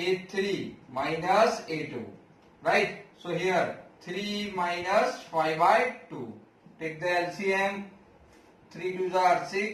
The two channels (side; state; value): both; identical; correlation 1.00